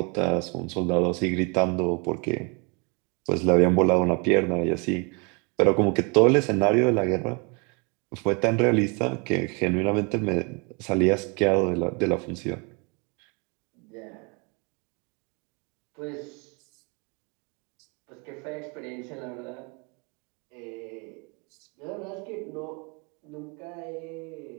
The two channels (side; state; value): left; quieter; 32.1 dB